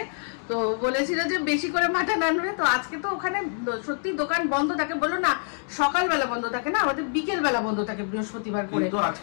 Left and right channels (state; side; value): silent; right; 61 dB below the other